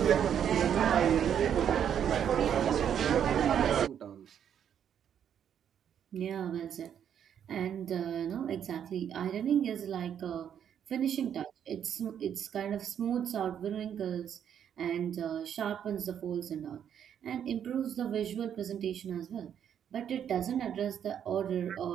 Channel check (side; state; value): left; quieter; 8.9 dB